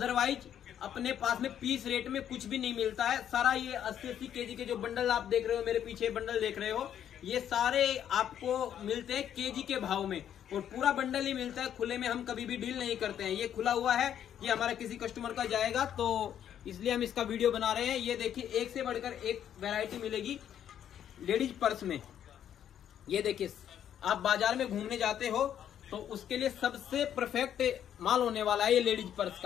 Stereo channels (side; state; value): right; quieter; 9.9 dB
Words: अपने पास में पीस रेट में कुछ भी नहीं मिलता है। सारा ये 80-80 केजी के जो बंडल आप देख रहे हो, मेरे पीछे बंडल देख रहे हो, ये सारे आपको मिलते हैं केजी के भाव में और पूरा बंडल ही मिलता है। खुले में हम कभी भी डील नहीं करते हैं। ये खुला हुआ है, ये हमारा किसी कस्टमर का जाएगा तो इसलिए हम इसका वीडियो बना रहे हैं। ये देखिए एक से बढ़कर एक वैरायटी मिलेगी लेडीज पर्स में। ये देखिए आप बाजार में घूमने जाते हो तो उसके लिए सबसे परफेक्ट माल होने वाला है ये लेडीज पर्स